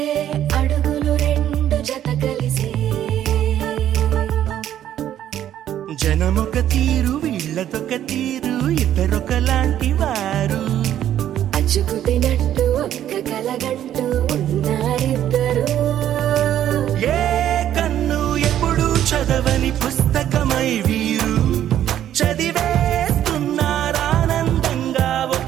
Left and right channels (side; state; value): left; quieter; 11.2 dB